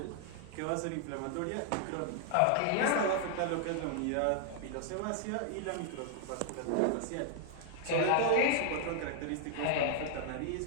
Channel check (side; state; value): both; different; correlation 0.00